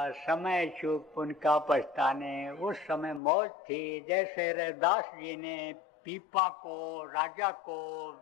समय चूक पुण्य का पछताने। उस समय मौज थी, जैसे रैदास जी ने पीपा को, राजा को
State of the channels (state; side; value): drops out; right; at 3.2 s